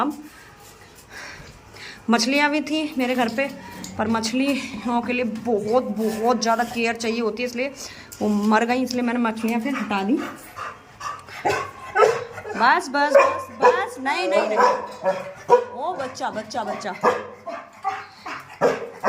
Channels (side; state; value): both; identical; correlation 1.00